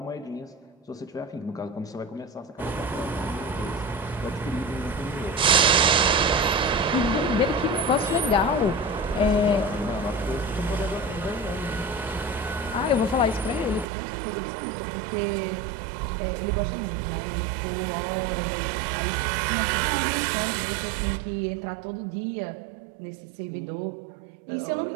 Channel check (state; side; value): drops out; left; at 13.9 s